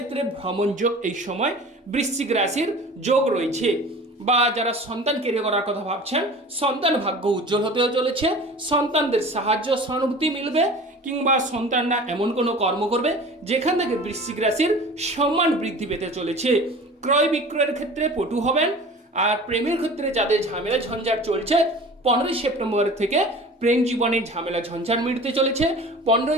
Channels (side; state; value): both; normal; correlation 0.40